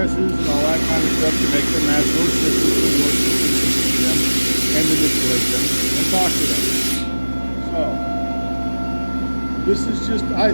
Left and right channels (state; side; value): inverted; both; correlation -1.00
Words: and all that kind of stuff to make them match those systems and your systems and see them and manipulate them and talk to them. So, this is just, I